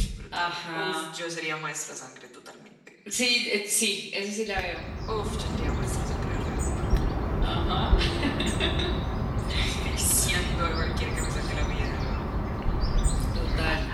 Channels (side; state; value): both; identical; correlation 1.00